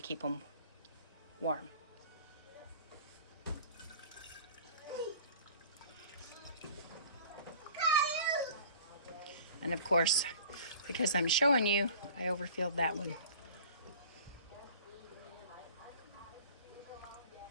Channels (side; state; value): both; inverted; correlation -0.45